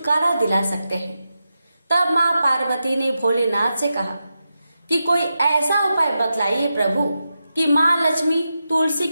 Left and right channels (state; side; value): inverted; both; correlation -0.89